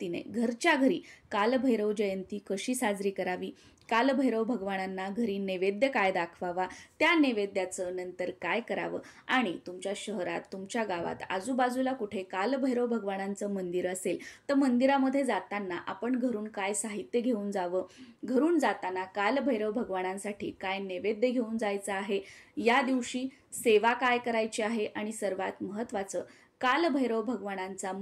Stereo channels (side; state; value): both; identical; correlation 1.00